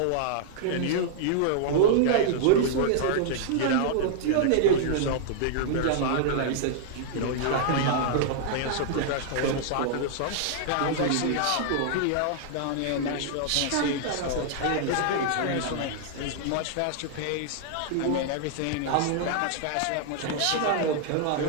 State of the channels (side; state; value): both; different; correlation -0.01